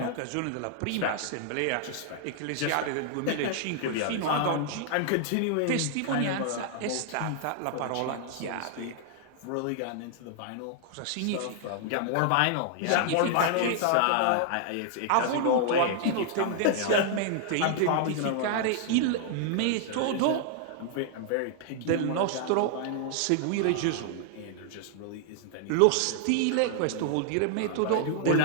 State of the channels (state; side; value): different; both; correlation -0.01